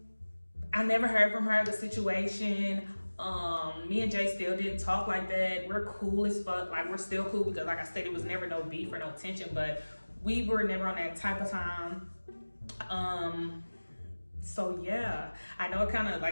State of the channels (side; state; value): both; inverted; correlation -1.00